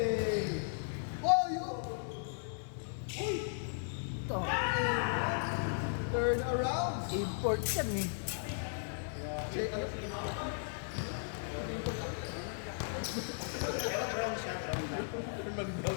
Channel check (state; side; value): silent; right; digital silence